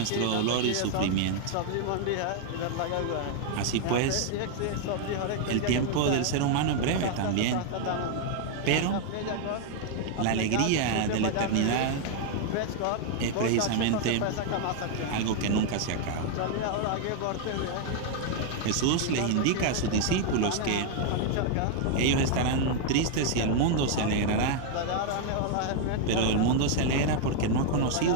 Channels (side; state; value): both; different; correlation 0.00